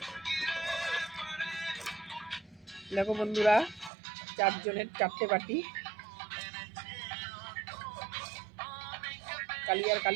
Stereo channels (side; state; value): left; drops out; at 3.9 s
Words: দেখো বন্ধুরা, 4 জনের 4টে বাটি। কালি আর